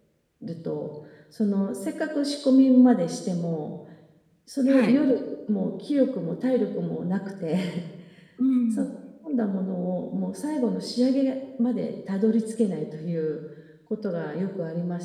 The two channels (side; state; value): both; identical; correlation 1.00